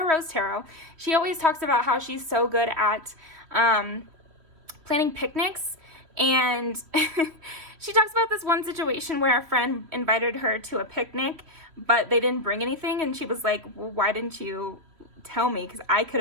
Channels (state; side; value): late; left; 3.3 ms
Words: Rose Tarot. She always talks about how she's so good at planning picnics. And she talks about this one situation where a friend invited her to a picnic, but they didn't bring anything. And she was like, well, why didn't you tell me? Because I could